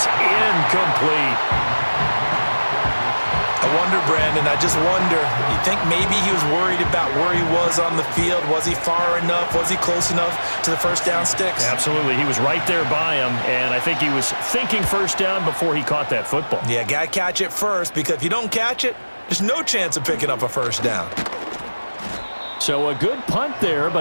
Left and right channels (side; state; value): both; inverted; correlation -1.00